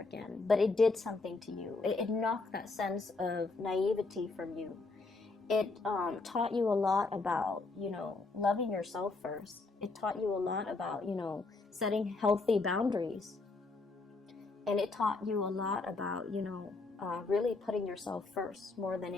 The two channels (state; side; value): quieter; right; 3.7 dB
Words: But it did something to you. It knocked that sense of naivety from you. It taught you a lot about, loving yourself first. It taught you a lot about, setting healthy boundaries. And it taught you a lot about, really putting yourself first more than